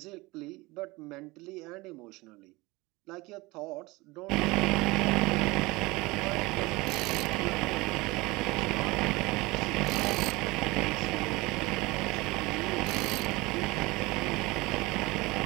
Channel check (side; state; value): left; quieter; 22.3 dB